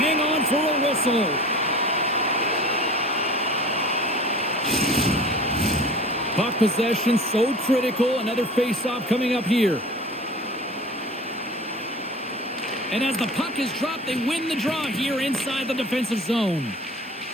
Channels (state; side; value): normal; both; correlation 0.40